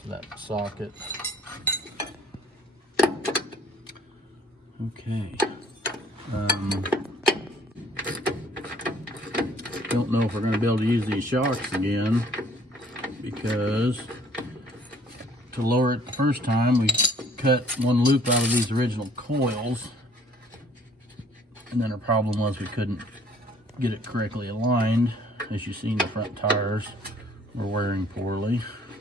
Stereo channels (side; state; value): both; normal; correlation 0.57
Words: So that socket. Okay. Don't know if we're going to be able to use these shocks again, because to lower it the first time we cut one loop out of these original coils, and then our problem was we couldn't get it correctly aligned. As you see, the front tires were wearing poorly.